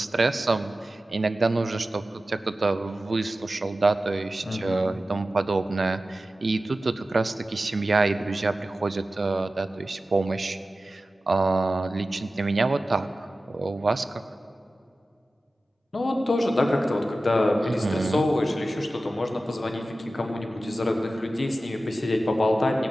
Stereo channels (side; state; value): both; normal; correlation 0.95